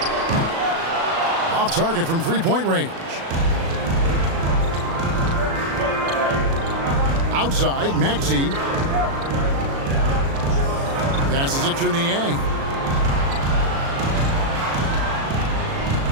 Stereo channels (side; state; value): left; late; 36 ms